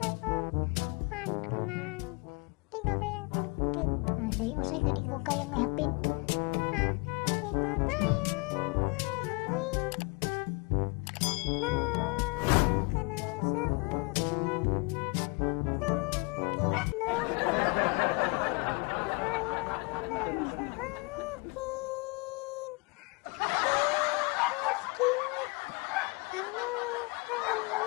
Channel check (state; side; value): quieter; right; 30.4 dB